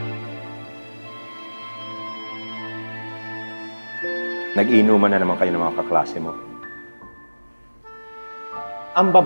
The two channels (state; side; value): inverted; both; correlation -1.00